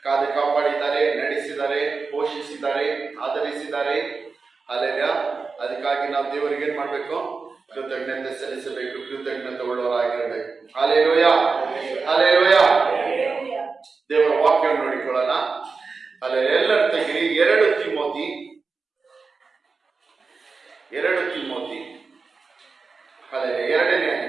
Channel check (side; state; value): left; quieter; 4.5 dB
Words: ಕಾದು ಕಾಪಾಡಿದ್ದಾರೆ, ನಡೆಸಿದ್ದಾರೆ, ಪೋಷಿಸಿದ್ದಾರೆ, ಆಧರಿಸಿದ್ದಾರೆ. ಅಲ್ಲೆಲ್ಲ ಅದಕ್ಕಾಗಿ ನಾವು ದೇವರಿಗೆ ಏನ್ ಮಾಡ್ಬೇಕು? ಕೃತಜ್ಞತೆ ಸಲ್ಲಿಸಬೇಕು, ಕೃತಜ್ಞತೆ ಉಳ್ಳವರಾಗಿರಬೇಕು. Hallelujah, hallelujah. ದೇವರ ವಾಕ್ಯವನ್ನು ನೋಡಿಕೊಳ್ಳೋಣ. ಅಲ್ಲೇ ಎಲ್ಲರ ತೆಗಿರಿ 2 ತಿಮೋಥಿ ಅಲ್ಲೇ 2ನೇ